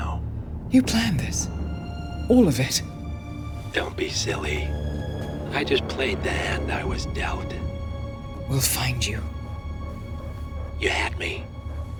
You planned this? All of it? Don't be silly. I just played the hand I was dealt. We'll find you. You had me.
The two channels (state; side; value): identical; both; correlation 1.00